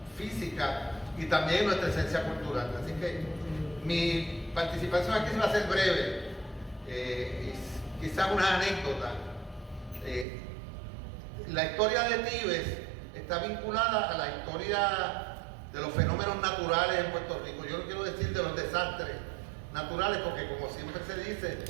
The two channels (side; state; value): left; drops out; at 10.2 s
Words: física y también en nuestra esencia cultural. Así que mi participación aquí va a ser breve, quizás una anécdota. La historia de Tíbet está vinculada a la historia de los fenómenos naturales en Puerto Rico. Yo no quiero decir de los desastres naturales, porque como siempre se dice,